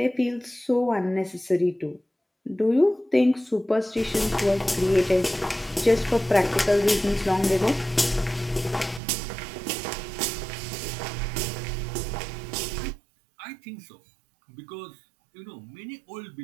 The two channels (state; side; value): drops out; left; at 9.0 s